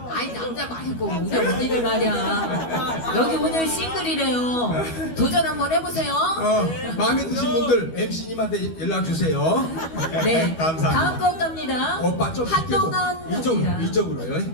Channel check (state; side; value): late; right; 12 ms